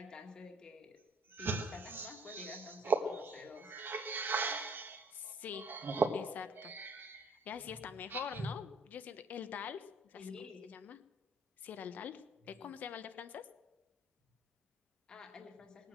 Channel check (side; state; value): both; normal; correlation 0.58